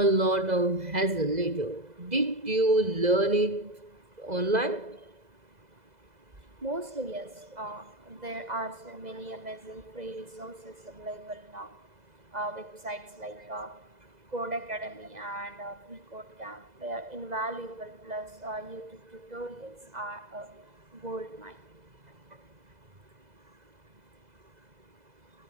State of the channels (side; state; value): left; late; 2.0 ms